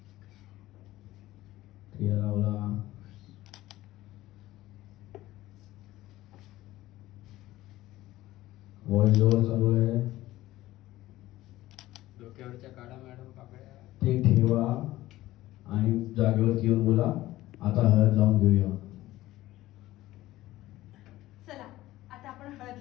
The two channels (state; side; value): quieter; right; 16.2 dB